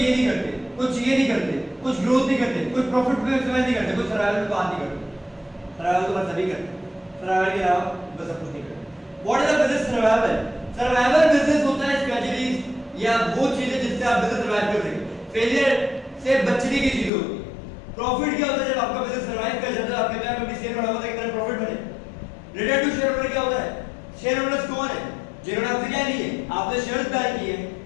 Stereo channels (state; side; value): drops out; right; at 17.1 s